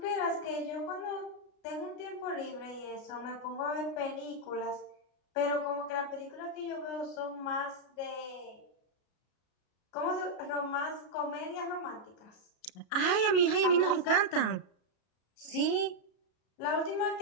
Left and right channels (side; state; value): right; late; 33 ms